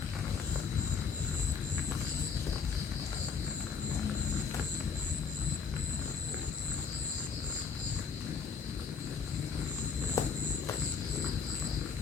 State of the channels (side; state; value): right; quieter; 5.9 dB